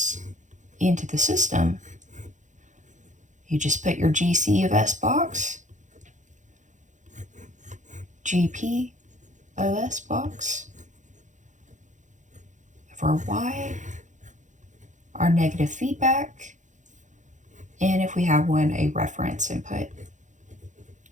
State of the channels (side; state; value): left; late; 0.36 ms